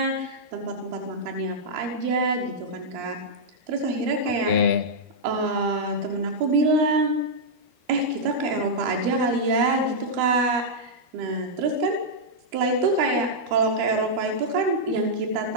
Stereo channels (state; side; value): late; left; 12 ms